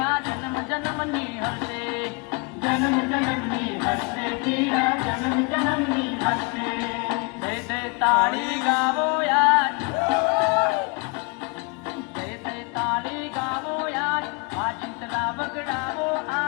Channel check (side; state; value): right; quieter; 31.6 dB